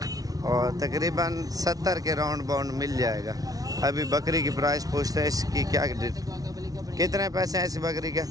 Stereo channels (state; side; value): late; left; 0.18 ms